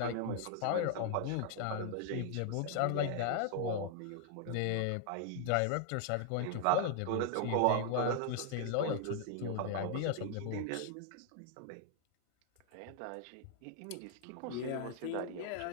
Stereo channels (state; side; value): different; both; correlation 0.00